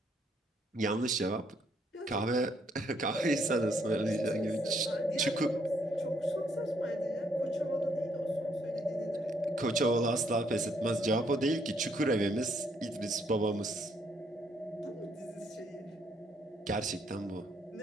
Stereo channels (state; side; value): normal; both; correlation 0.70